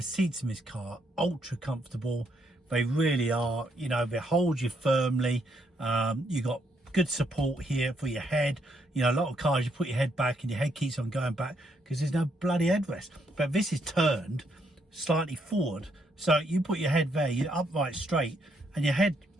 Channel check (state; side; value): normal; both; correlation 0.74